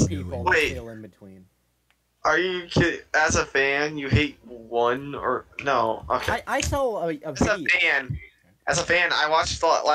of people that Wait. feel in between. Are you kidding? As a fan, you hate one or no? Okay. I saw a video. As a fan, I watched the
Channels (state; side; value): identical; both; correlation 1.00